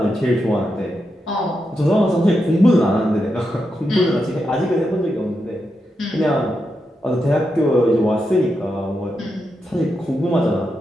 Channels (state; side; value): normal; both; correlation 0.86